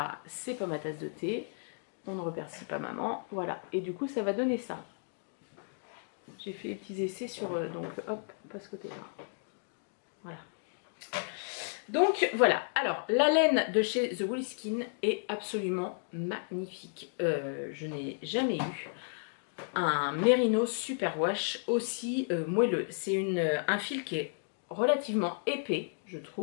c'est pas ma tasse de thé. On ne remercie pas maman. Voilà. Et du coup, ça va donner ça. J'ai fait des petits essais sur... donc, hop, pas ce côté-là. Voilà. Donc voilà, alors la laine de chez The Woolly Skin est absolument magnifique. Je n'ai jamais eu un Merino Superwash aussi moelleux. C'est un fil qui est relativement épais, je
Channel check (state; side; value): silent; right; digital silence